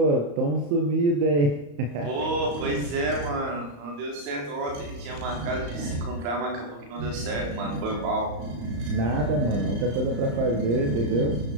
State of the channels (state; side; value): late; left; 35 ms